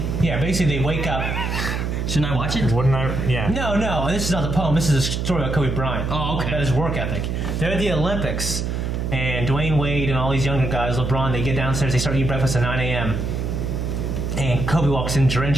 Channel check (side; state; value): right; noise; hum, 2 dB below the sound